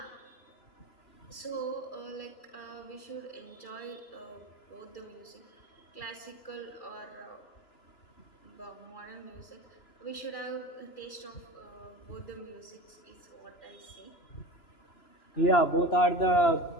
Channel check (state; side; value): late; right; 2.4 ms